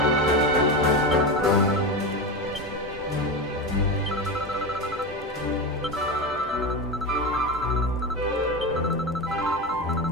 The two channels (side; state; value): both; normal; correlation 0.19